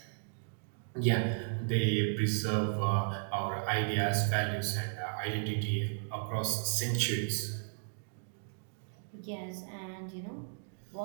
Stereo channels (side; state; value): left; silent; digital silence